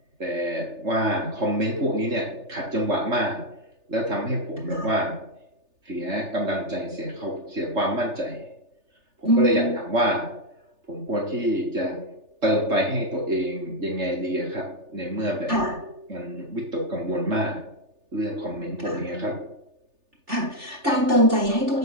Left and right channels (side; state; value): left; late; 3.3 ms